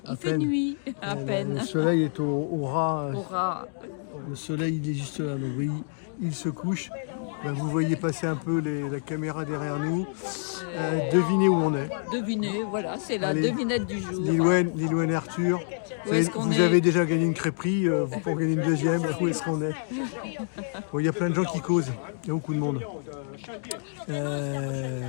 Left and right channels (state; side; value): silent; right; digital silence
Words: il À fait peine. nuit, à peine. Le soleil est au ras. Aura. Le soleil il est juste là, donc oui, il se couche. Là, vous voyez passer un peu la caméra derrière nous. Devinez où on est. Devinez, voilà, c'est la Allez. devinette du jour. Lilouane et Arthur. Où est-ce qu'on Vous est avez déjà gagné une crêperie, vous pouvez en gagner une deuxième. Où est-ce qu'on est? Bon, il y a plein de gens qui causent, il y a beaucoup de monde.